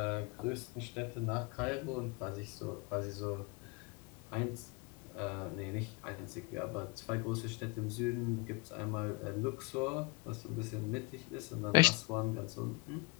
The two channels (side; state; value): right; quieter; 25.5 dB